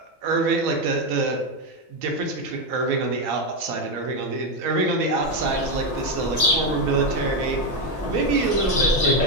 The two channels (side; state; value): both; normal; correlation 0.07